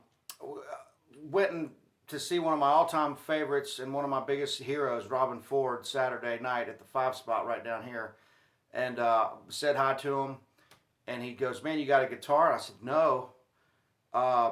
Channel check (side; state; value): both; identical; correlation 1.00